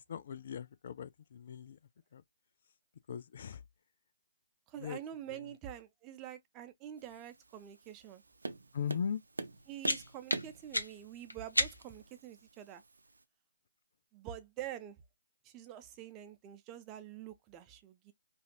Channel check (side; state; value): both; inverted; correlation -0.72